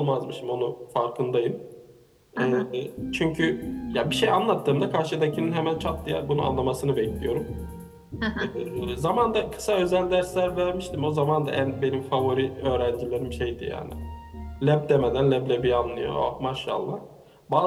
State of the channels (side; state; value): both; identical; correlation 1.00